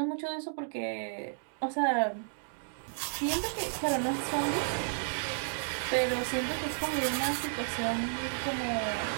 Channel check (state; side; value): silent; left; digital silence